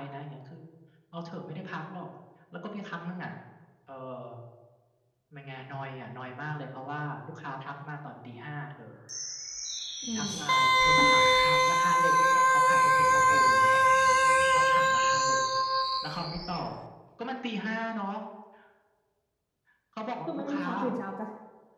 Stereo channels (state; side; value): identical; both; correlation 1.00